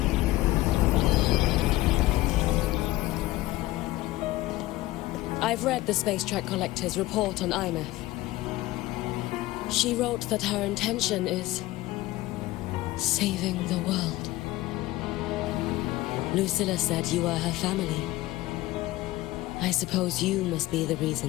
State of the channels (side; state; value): right; quieter; 17.8 dB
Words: I've read the Space Track Collector's report on IMF. She wrote that her intention is saving the world. Lucilla said you are her family. I suppose you must be the